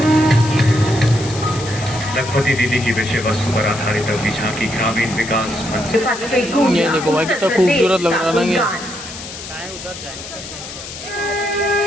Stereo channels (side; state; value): left; noise; hiss, 11 dB below the sound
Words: लखपति दीदी की विषय वस्तु पर आधारित अगली झांकी ग्रामीण विकास मंत्री। ये देखो भाई कितना खूबसूरत लग रहा है ना ये।